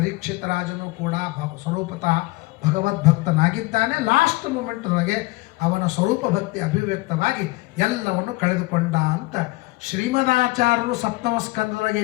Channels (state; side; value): quieter; right; 22.1 dB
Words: ರಾಜನು ಕೂಡ ಸ್ವರೂಪತಃ ಭಗವದ್ಭಕ್ತನಾಗಿದ್ದಾನೆ. ಲಾಸ್ಟ್ ಮೂಮೆಂಟ್ದೊಳಗೆ ಅವನ ಸ್ವರೂಪ ಭಕ್ತಿ ಅಭಿವ್ಯಕ್ತವಾಗಿ ಎಲ್ಲವನ್ನು ಕಳೆದುಕೊಂಡ ಅಂತ ಶ್ರೀಮದಾಚಾರ್ಯರು ಸಪ್ತಮ ಸ್ಕಂದದೊಳಗೆ